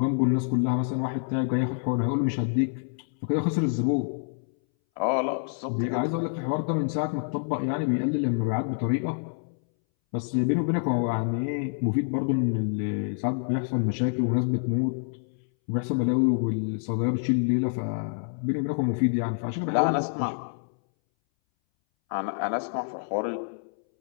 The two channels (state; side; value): silent; right; 60 dB below the other